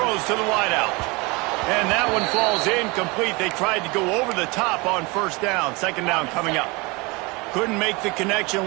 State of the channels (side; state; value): left; quieter; 26.2 dB